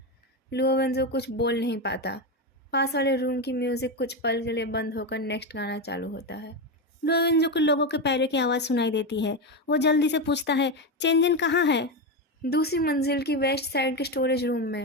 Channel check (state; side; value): normal; both; correlation 0.13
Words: लुओ वेंजो कुछ बोल नहीं पाता। पास वाले रूम की म्यूज़िक कुछ पल के लिए बंद होकर नेक्स्ट गाना चालू होता है। लुओ वेंजो को लोगों के पैरों की आवाज़ सुनाई देती है। वो जल्दी से पूछता है, चेंजन कहाँ है? दूसरी मंजिल की वेस्ट साइड के स्टोरेज रूम